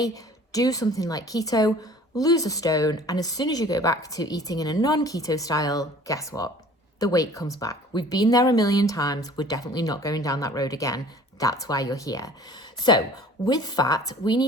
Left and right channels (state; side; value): normal; both; correlation 0.49